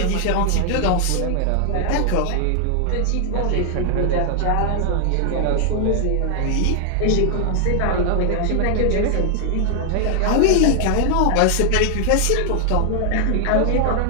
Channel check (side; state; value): both; different; correlation 0.00